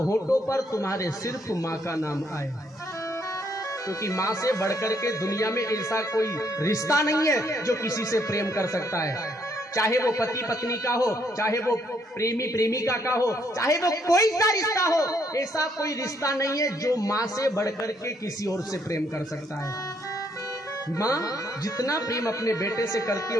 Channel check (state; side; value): normal; both; correlation 0.71